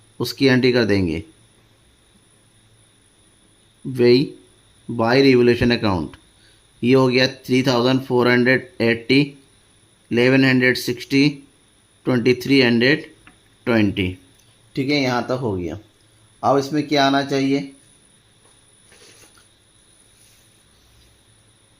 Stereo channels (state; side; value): identical; both; correlation 1.00